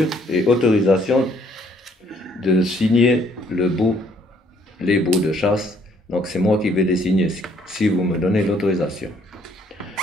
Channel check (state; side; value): normal; both; correlation 0.65